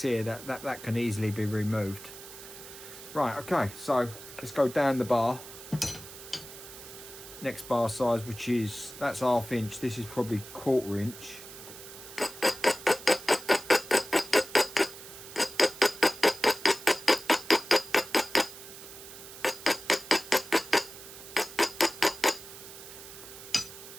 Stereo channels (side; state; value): right; noise; hiss, 15 dB below the sound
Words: here that can easily be removed. Right, okay, so let's go down the bar. Next bar size, which is, that's 1/2 inch. This is probably 1/4 inch.